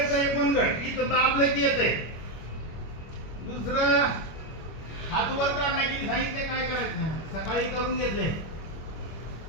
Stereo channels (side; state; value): right; late; 25 ms